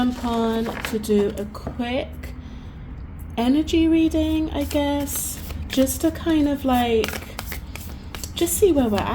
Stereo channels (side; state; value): both; identical; correlation 1.00